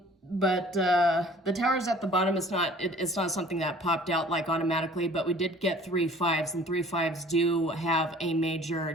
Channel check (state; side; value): normal; both; correlation 0.50